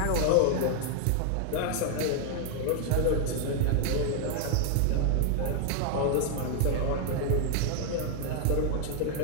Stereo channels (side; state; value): both; different; correlation 0.00